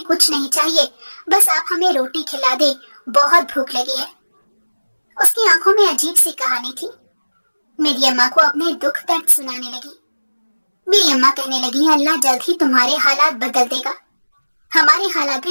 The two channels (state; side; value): inverted; both; correlation -1.00